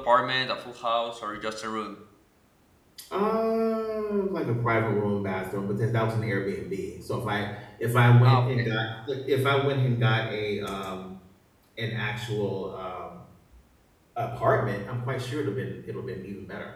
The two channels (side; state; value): both; identical; correlation 1.00